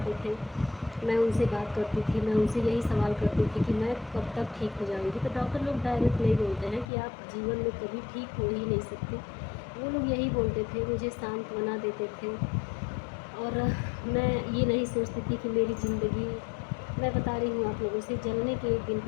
थे मैं उनसे बात करती थी, मैं उनसे यही सवाल करती थी कि मैं कब तक ठीक हो जाऊंगी। तो डॉक्टर लोग डायरेक्ट नहीं बोलते हैं कि आप जीवन में कभी ठीक हो ही नहीं सकते। वो लोग यही बोलते थे, मुझे सांत्वना देते थे। और मैं ये नहीं सोचती थी कि मेरी ज़िंदगी, मैं बता रही हूँ आप लोगों से, जलने के एक दिन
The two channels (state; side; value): drops out; right; at 6.9 s